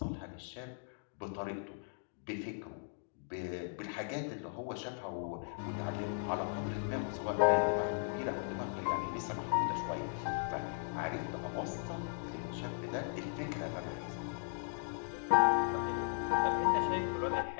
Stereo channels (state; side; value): silent; right; digital silence